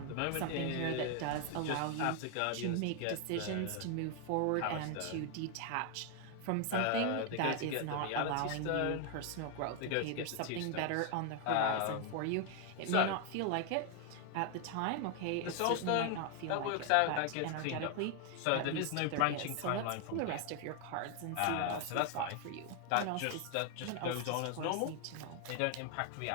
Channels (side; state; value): both; different; correlation 0.00